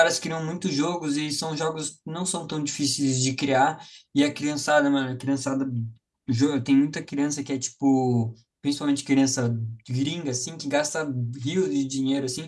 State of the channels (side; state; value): both; identical; correlation 1.00